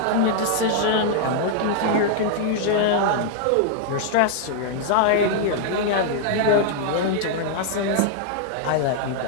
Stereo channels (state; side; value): different; both; correlation 0.00